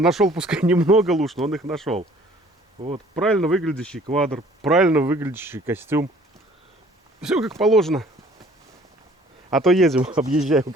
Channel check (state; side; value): normal; both; correlation 0.55